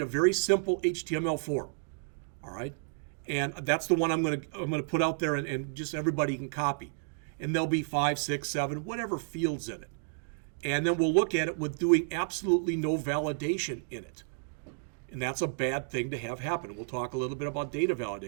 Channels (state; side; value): silent; left; digital silence